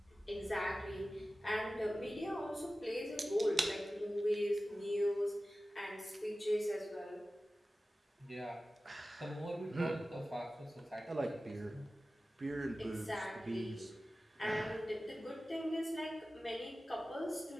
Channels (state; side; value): normal; both; correlation 0.95